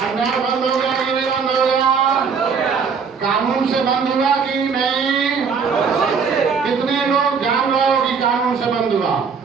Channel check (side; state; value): left; quieter; 5.9 dB